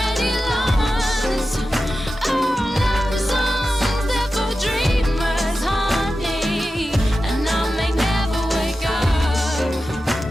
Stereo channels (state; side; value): normal; both; correlation 0.92